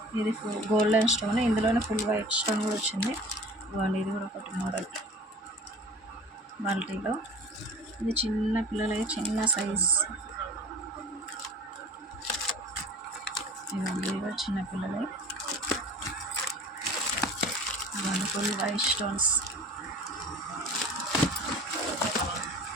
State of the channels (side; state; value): both; normal; correlation 0.42